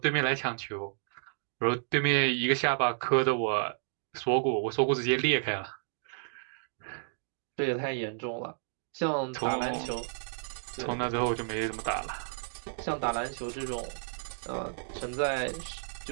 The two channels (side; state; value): left; silent; digital silence